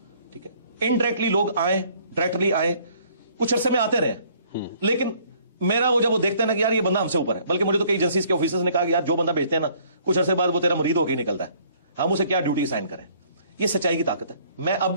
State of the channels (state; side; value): inverted; both; correlation -0.60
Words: ٹھیک ہے, انڈائریکٹلی لوگ آئیں, ڈائریکٹلی آئیں, کچھ عرصے میں آتے رہے, لیکن میرا وہ جب وہ دیکھتے ہیں نا کہ یار یہ بندہ ہم سے اوپر ہے, بلکہ مجھے تو کئی ایجنسیز کے آفیسرز نے کہا کہ یار جو بندہ بیچتے ہیں نا کچھ عرصے بعد وہ تیرا مرید ہو کے ہی نکلتا ہے, ہم اسے کیا ڈیوٹی اسائن کریں. یہ سچائی کی طاقت ہے. میں اب